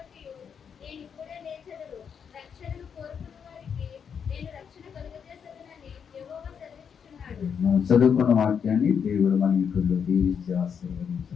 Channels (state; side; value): quieter; right; 7.1 dB